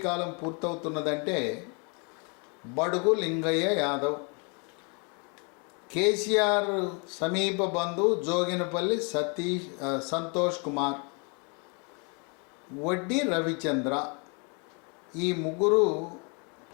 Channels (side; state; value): right; quieter; 34.8 dB